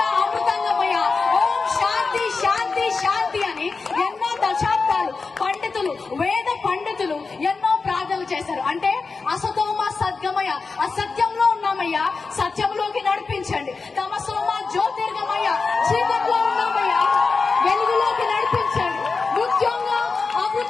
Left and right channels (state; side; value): quieter; right; 4.4 dB